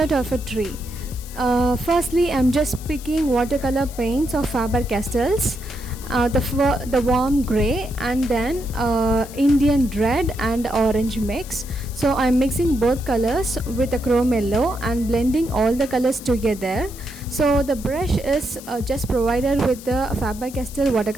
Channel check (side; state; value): left; noise; hiss, 17 dB below the sound